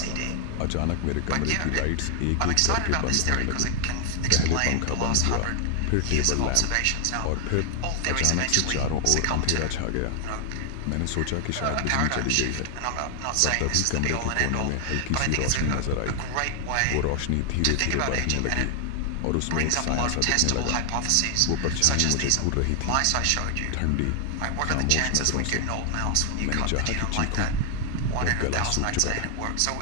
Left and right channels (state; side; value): different; both; correlation 0.00